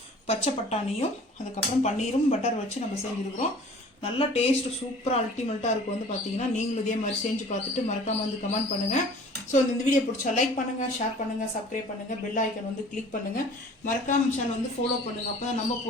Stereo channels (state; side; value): normal; both; correlation 0.48